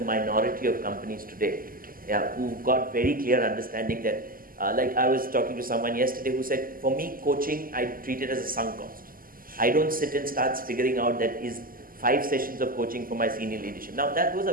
minority of companies today, yeah, who've got very clear understanding that, like I was talking to someone yesterday who said, for me, coaching, I treat it as a sunk cost. I don't sit and start figuring out that is 5 sessions of coaching for my senior leadership. Now, those are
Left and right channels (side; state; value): left; late; 0.42 ms